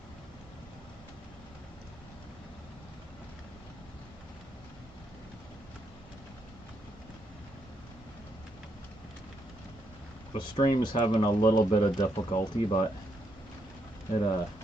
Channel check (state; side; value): normal; both; correlation 0.78